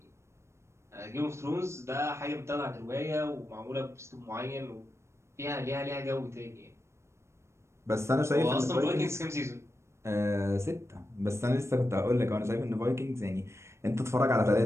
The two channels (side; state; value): left; late; 0.13 ms